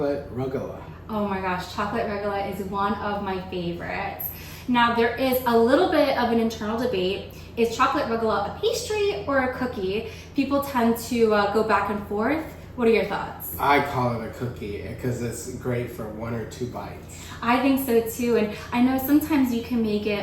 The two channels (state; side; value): identical; both; correlation 1.00